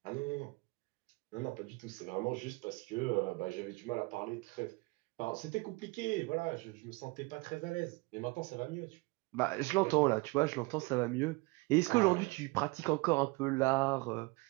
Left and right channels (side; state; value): left; quieter; 25.7 dB